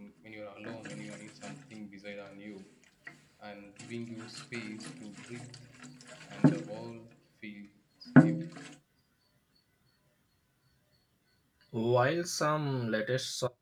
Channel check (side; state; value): both; identical; correlation 1.00